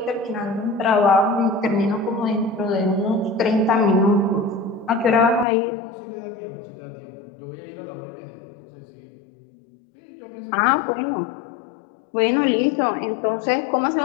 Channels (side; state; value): right; drops out; at 5.5 s